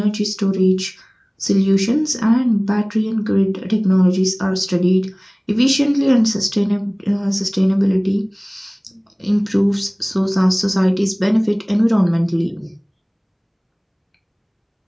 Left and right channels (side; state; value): both; identical; correlation 1.00